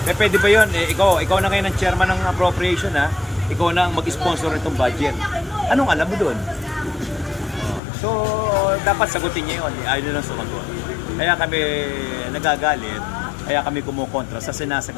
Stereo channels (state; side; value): drops out; right; at 7.8 s